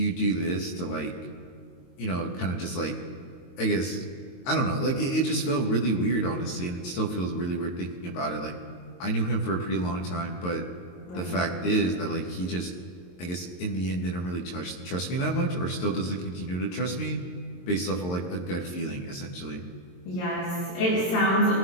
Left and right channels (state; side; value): late; right; 22 ms